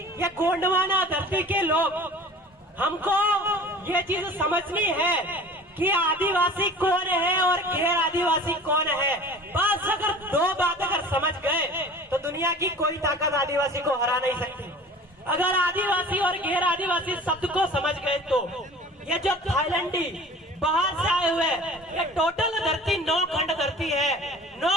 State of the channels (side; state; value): both; normal; correlation 0.42